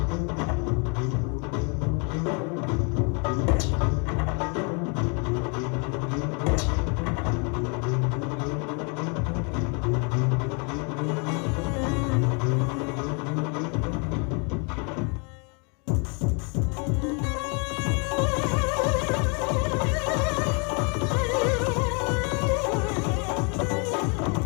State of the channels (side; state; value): right; quieter; 35.0 dB